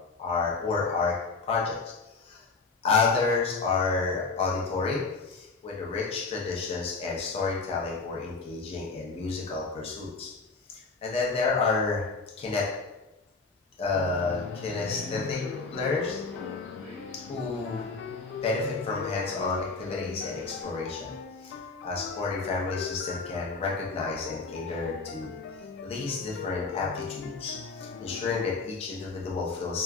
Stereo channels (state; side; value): quieter; right; 4.1 dB